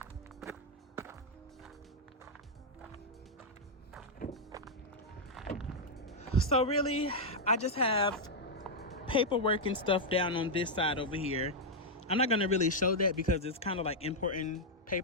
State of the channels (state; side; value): normal; both; correlation -0.03